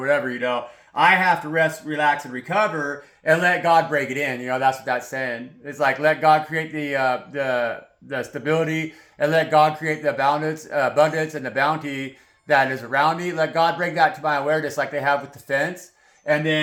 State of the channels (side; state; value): both; identical; correlation 1.00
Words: you know. I have to rest, relax, and recover and let God break it in. You know, that's what that's saying. It's like, let God create the stability, and let God create the abundance and the bounty that is around me. Let God bring that to my awareness like they have with the fence, and